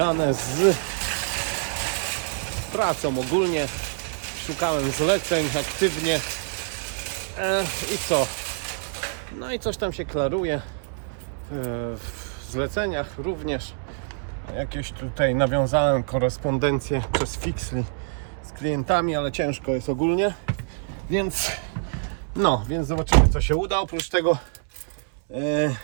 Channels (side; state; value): left; silent; 61 dB below the other